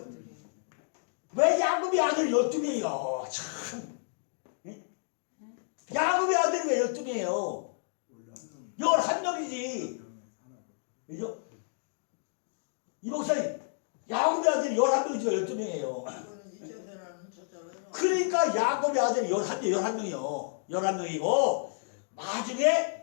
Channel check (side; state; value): right; silent; digital silence